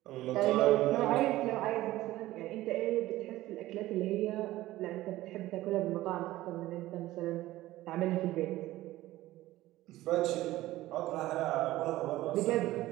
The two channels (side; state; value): left; quieter; 16.4 dB